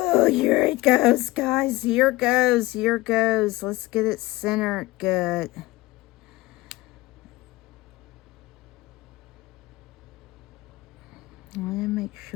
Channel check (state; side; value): quieter; right; 19.6 dB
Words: here it goes, guys. Here goes. Let's get it centered good. I want to make